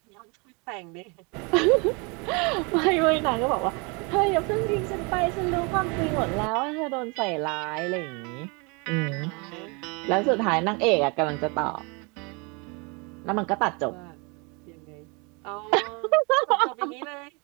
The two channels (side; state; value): left; quieter; 30.7 dB